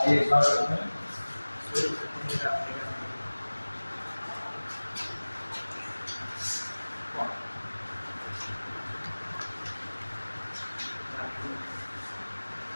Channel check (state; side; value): inverted; both; correlation -1.00